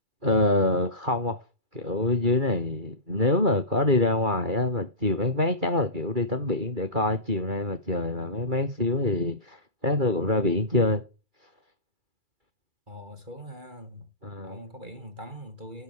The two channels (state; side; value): late; left; 2.3 ms